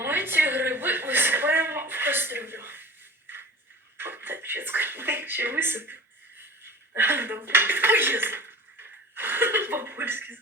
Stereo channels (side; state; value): both; normal; correlation 0.37